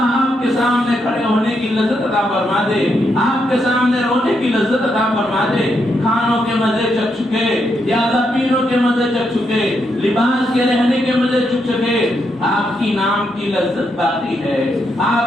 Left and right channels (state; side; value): normal; both; correlation 0.80